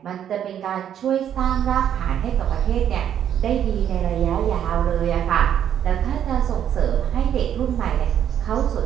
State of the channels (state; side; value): quieter; left; 9.7 dB